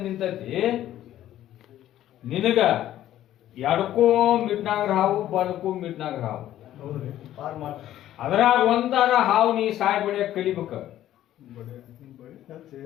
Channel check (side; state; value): right; quieter; 12.7 dB